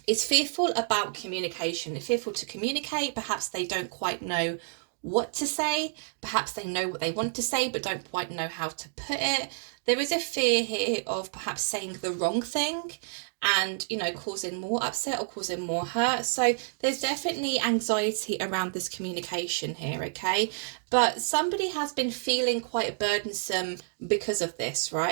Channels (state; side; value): silent; left; digital silence